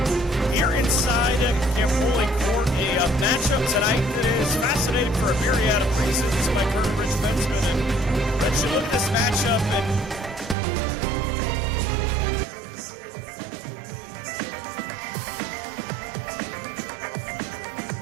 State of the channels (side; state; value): left; drops out; at 10.6 s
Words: Here inside Camp Foley Court, a matchup tonight that is fascinating for a myriad of reasons. My current Rich Bensman, and Rich, you look at this matchup, and I know that the phrase trap game gets used a lot, but Wilmington at 3-11, coming off 2 straight losses. They